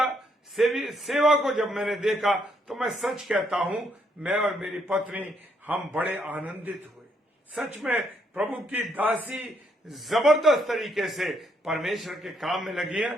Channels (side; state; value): both; normal; correlation 0.73